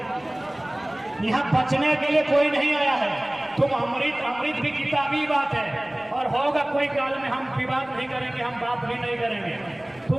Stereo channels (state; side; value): noise; left; rumble, 30 dB below the sound